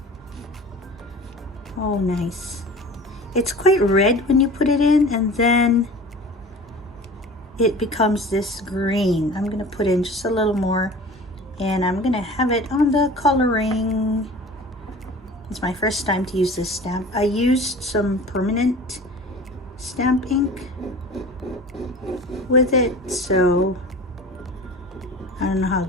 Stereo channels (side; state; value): both; normal; correlation 0.40